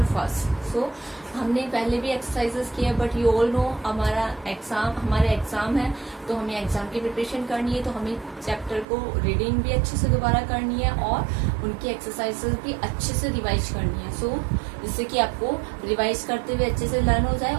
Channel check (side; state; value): left; drops out; at 8.8 s